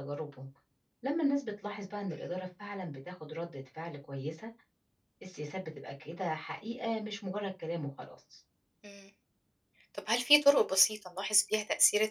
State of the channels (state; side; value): identical; both; correlation 1.00